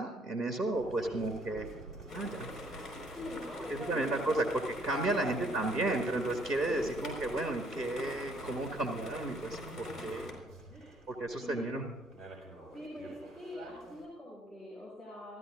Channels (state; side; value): normal; both; correlation 0.64